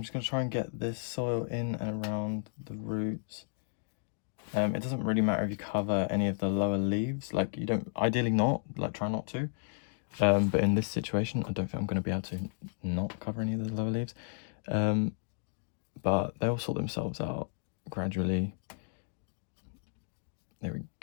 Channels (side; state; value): right; silent; digital silence